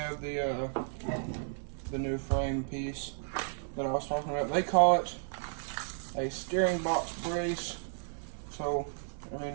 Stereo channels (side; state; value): left; silent; digital silence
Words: the new frame piece that I was talking about. They call it a steering box brace. So, I mean,